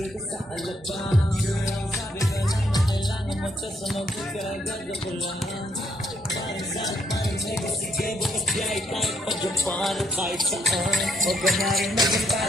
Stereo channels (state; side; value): normal; both; correlation 0.72